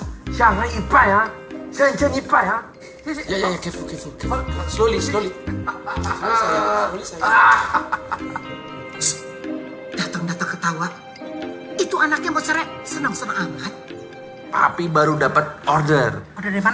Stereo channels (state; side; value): identical; both; correlation 1.00